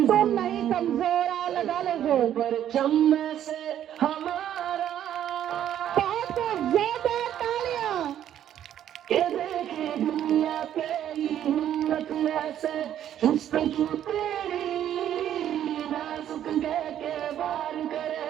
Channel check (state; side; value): quieter; left; 10.8 dB